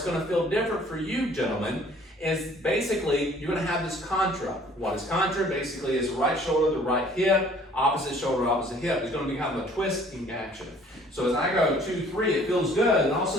going to feel different for you, gentlemen, is basically you're going to have this contra. What is contra? Basically, is right shoulder to right hip, opposite shoulder, opposite hip. It's going to be kind of a twisting action. So as I go 2, 3, it feels good, and all of a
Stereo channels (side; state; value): both; normal; correlation 0.55